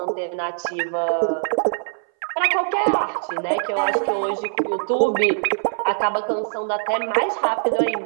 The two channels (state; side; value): silent; left; 59 dB below the other